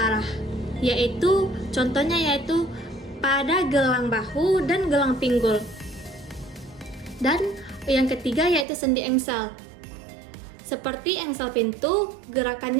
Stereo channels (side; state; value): left; drops out; at 8.7 s